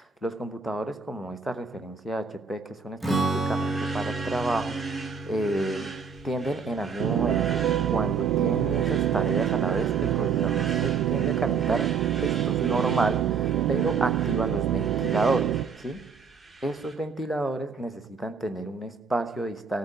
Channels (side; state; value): left; quieter; 5.6 dB